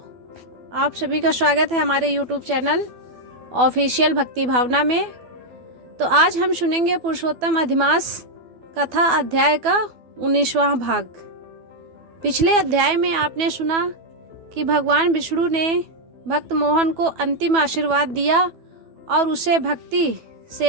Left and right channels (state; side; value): late; left; 12 ms